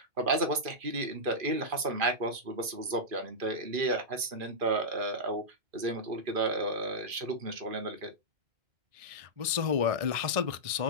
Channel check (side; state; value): left; late; 2.4 ms